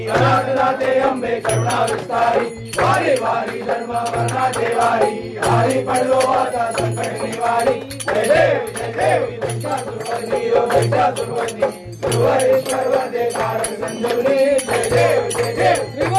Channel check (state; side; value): identical; both; correlation 1.00